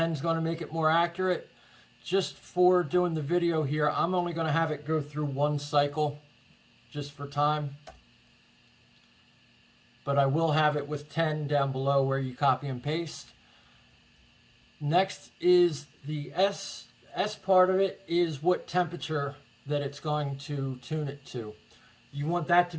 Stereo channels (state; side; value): identical; both; correlation 1.00